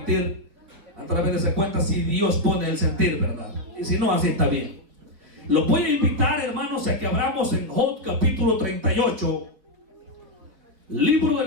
a través de esa cuenta si Dios pone el sentir, ¿verdad? Y si no, así está bien. Los voy a invitar, hermanos, a que abramos en Job capítulo 38, libro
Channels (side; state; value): left; late; 4.6 ms